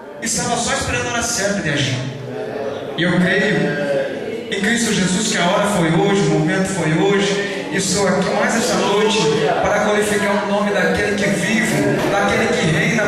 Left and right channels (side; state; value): both; identical; correlation 1.00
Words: estava só esperando a hora certa de agir. E eu creio em Cristo Jesus que a hora foi hoje, o momento foi hoje. E estou aqui mais essa noite para glorificar o nome daquele que vive, daquele que reina